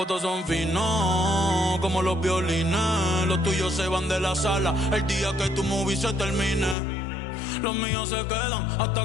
todos son finos, como los violines. Los tuyos se van de la sala el día que tu movie se termine. Los míos se quedan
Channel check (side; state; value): right; drops out; at 6.8 s